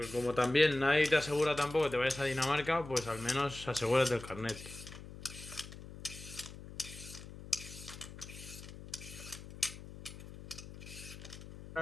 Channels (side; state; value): left; noise; hum, 14 dB below the sound